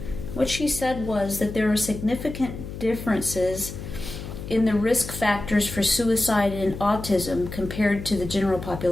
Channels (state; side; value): noise; left; hum, 9 dB below the sound